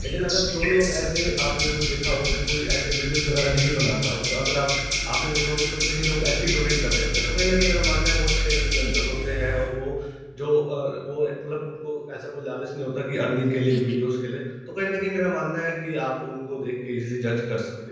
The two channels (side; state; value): both; identical; correlation 1.00